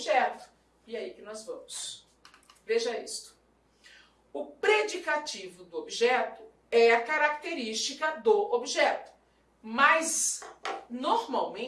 E aí que nós vamos. Veja isto. O predicativo do objeto é a característica do objeto, mas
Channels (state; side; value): identical; both; correlation 1.00